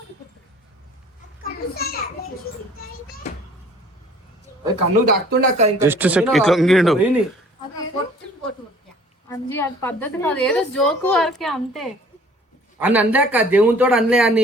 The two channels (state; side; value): normal; both; correlation 0.52